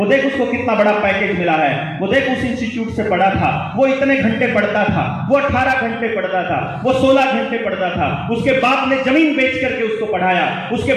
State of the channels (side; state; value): both; identical; correlation 1.00